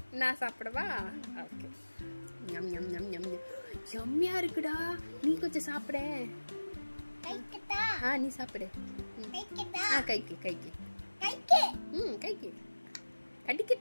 நான் சாப்பிடவா? ஓகே. ஞம் ஞம் ஞம் ஞம். யம்மியா இருக்குடா. நீ கொஞ்சம் சாப்பிடு. நீ சாப்பிடு. கைக்கு கைக்கு கைக்கு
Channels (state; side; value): inverted; both; correlation -1.00